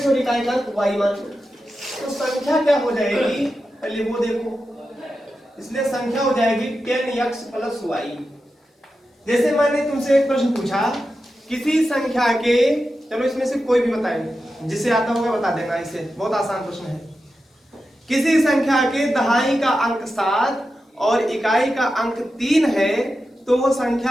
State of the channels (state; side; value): normal; both; correlation 0.90